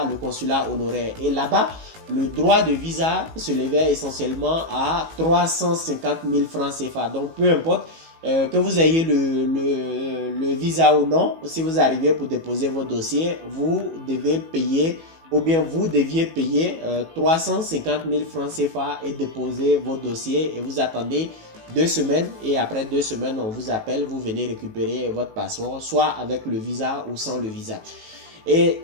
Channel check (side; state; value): left; late; 18 ms